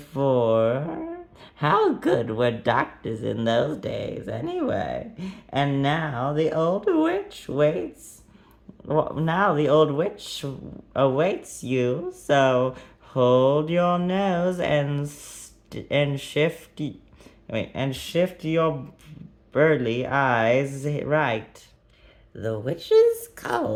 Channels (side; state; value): both; identical; correlation 1.00